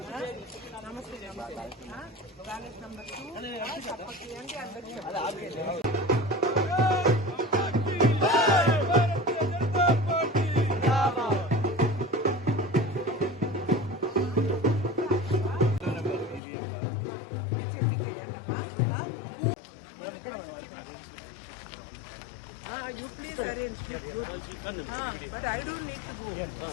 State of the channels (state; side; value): drops out; right; at 16.4 s